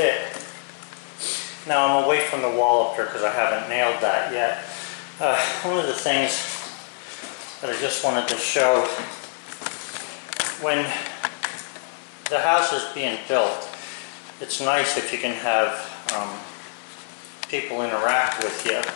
Now I'm away from the wall up here because I haven't nailed that yet. One of the things that I just wanted to show, when the house is being built, it's nice if you can have people interact with you.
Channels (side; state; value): right; silent; digital silence